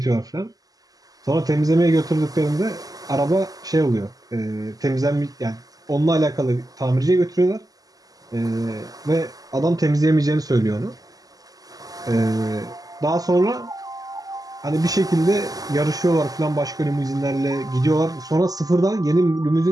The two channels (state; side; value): late; left; 0.17 ms